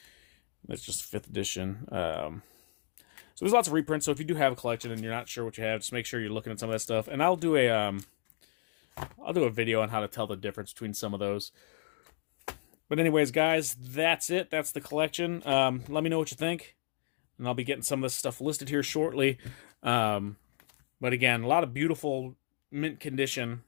That's just 5th edition. So there's lots of reprints. So if you do have a collection and you're not sure what you have, just make sure you're looking at some of that stuff. And I'll do a video on how to tell the difference between some of those. But anyways, guys, that's it. That's the collection. Let me know what you think. And I'll be getting some of this stuff listed here shortly. But again, a lot of beautiful mint condition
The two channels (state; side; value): silent; right; digital silence